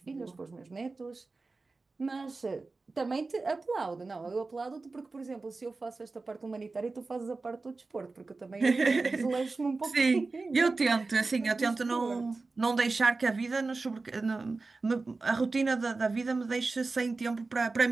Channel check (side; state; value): left; quieter; 3.7 dB